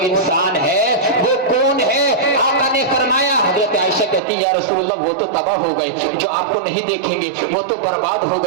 انسان ہے، وہ کون ہے؟ آقا نے فرمایا، حضرت عائشہ کہتی یا رسول اللہ وہ تو تباہ ہو گئے جو آپ کو نہیں دیکھیں گے، وہ تو برباد ہو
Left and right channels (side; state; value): left; drops out; at 4.2 s